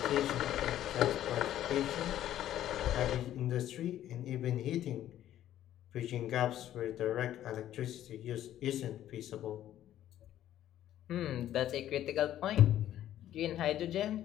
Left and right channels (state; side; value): quieter; right; 12.2 dB